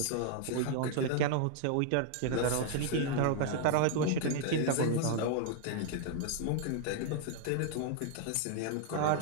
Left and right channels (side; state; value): both; different; correlation -0.01